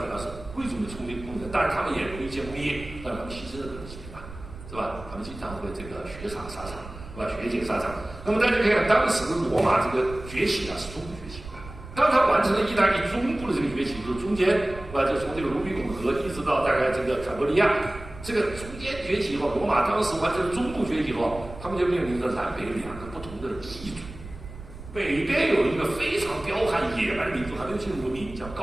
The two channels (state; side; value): noise; right; rumble, 14 dB below the sound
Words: 主要是贵族的冲锋功能，当然他们也容易建工业，但他们牺牲的可能性大，是吧？他们经常会这个血洒沙场。是吧？血溅沙场。那么大家可以看，当时罗马这个崛起啊，是中部崛起。当他完成了意大利中部的这个崛起，就是中间，是吧？就从这个卢比孔河一直到大概这个坎伯利亚，这个中间崛起以后，罗马当时完成了中部崛起以后，他们就面临着南北2个不同的异族。北边有一个非常彪悍野蛮的民族，还没有进入文明，叫